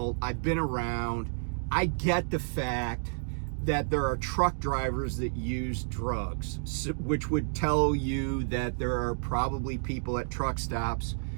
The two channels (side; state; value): left; silent; digital silence